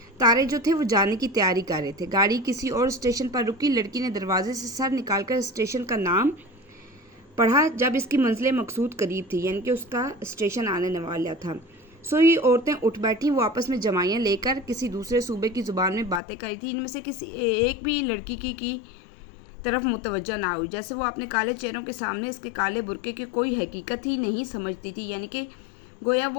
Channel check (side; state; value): right; drops out; at 16.2 s